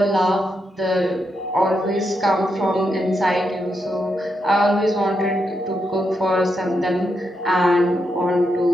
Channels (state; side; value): normal; both; correlation 0.83